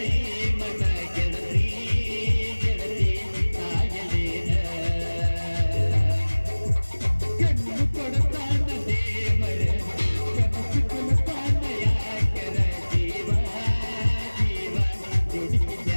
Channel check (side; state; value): both; inverted; correlation -1.00